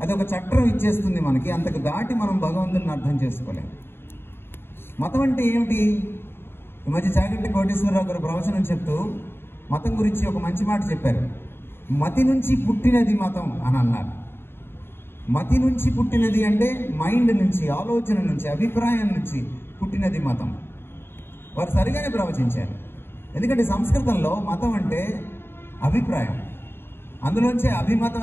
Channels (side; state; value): right; late; 0.11 ms